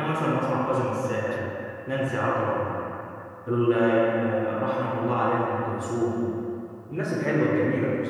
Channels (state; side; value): identical; both; correlation 1.00